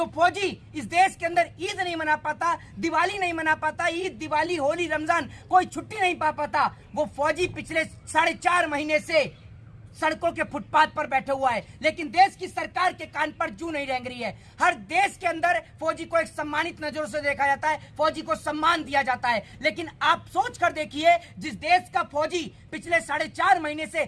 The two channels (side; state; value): both; identical; correlation 1.00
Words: फौजी इस देश के अंदर ईद नहीं मना पाता, दिवाली नहीं मना पाता, ईद, दिवाली, होली, रमजान कोई छुट्टी नहीं पा पाता, वो फौजी पिछले 4.5 महीने से सड़कों के फुटपाथ पर बैठे हुआ है। लेकिन देश की सरकार के कान पर जू नहीं रेंग रही है। हर देश के अंदर फौजी को एक सम्मानित नजरों से देखा जाता है, फौजी को सम्मान दिया जाता है। लेकिन आप सोच कर देखिए, जिस देश का फौजी पिछले 4.5 महीने से